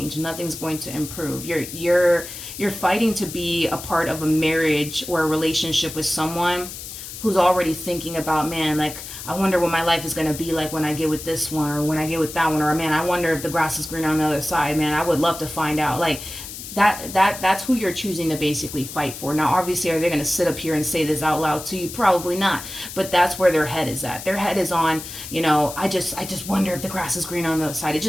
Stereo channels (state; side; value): noise; left; hiss, 11 dB below the sound